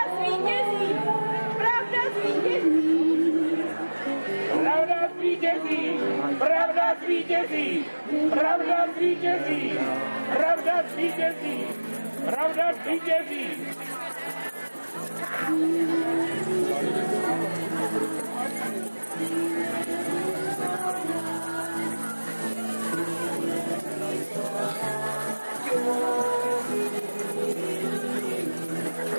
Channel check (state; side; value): inverted; both; correlation -1.00